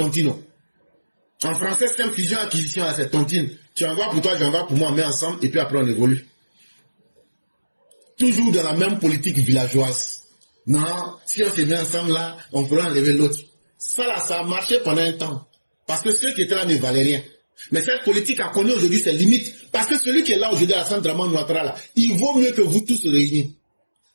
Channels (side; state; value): both; inverted; correlation -1.00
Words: En français, c'est une fusion-acquisition là, c'est tontine. Tu envoies pour toi, j'envoie pour moi, on met ensemble, et puis après on évolue. Toujours dans la même politique villageoise. Non, si on se met ensemble là, on pourra enlever l'autre. Ça là, ça a marché pendant un temps. Parce que ceux qui étaient là ne valaient rien. Mais cette politique a connu aujourd'hui ses limites. Parce que celui qui est là aujourd'hui à Alassane Dramane Ouattara, là, il vaut mieux que vous tous réunis.